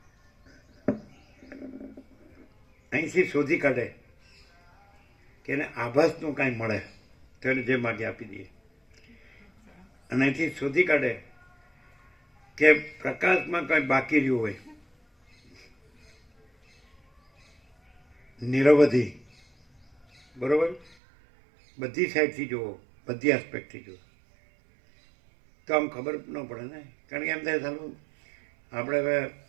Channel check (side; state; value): left; drops out; at 21.0 s